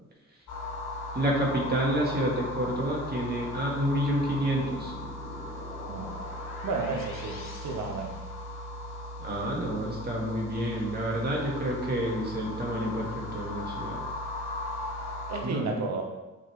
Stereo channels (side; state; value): both; normal; correlation 0.40